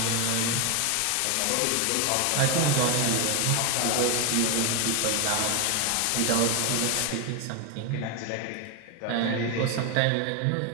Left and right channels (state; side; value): different; both; correlation 0.01